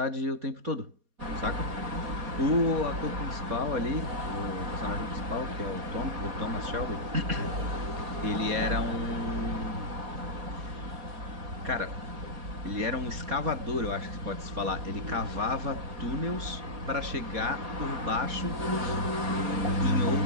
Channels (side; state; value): left; late; 4.2 ms